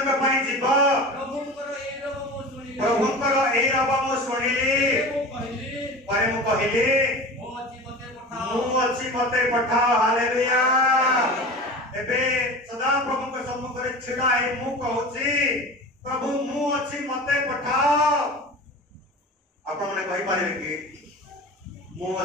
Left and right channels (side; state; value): both; normal; correlation 0.33